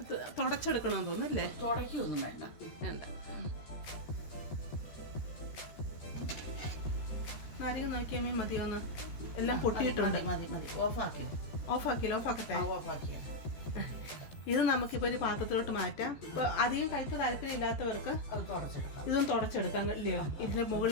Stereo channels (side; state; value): right; late; 13 ms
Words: തുടച്ചെടുക്കണമെന്ന് തോന്നുന്നല്ലേ? തുടയ്ക്കൊന്നും വേണ്ട. നാരങ്ങ നോക്കിയാൽ മതിയോന്ന് എല്ലാം പൊട്ടിയിട്ടുണ്ട്. മതി ഓഫാക്കിയ ഇത് നമുക്കിപ്പോൾ ഒരു പാത്രത്തിലോട്ട് മാറ്റാം. ഇപ്പോൾ അധികം കയ്പ് താല്പര്യമില്ലാത്തവർക്ക് ഇതും തുടച്ചെടുക്കാം ഇല്ലയോ? ഇതിൻ്റെ